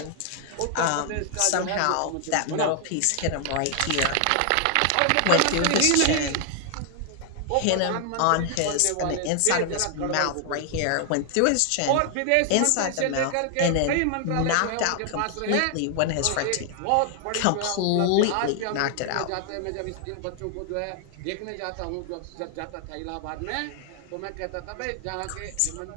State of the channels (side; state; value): both; different; correlation 0.00